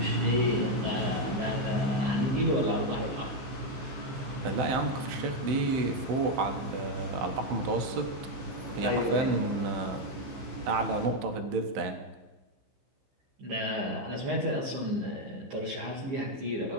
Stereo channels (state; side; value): late; left; 16 ms